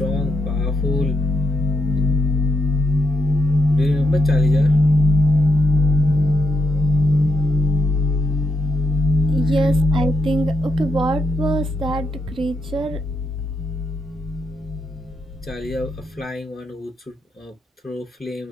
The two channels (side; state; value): both; normal; correlation 0.81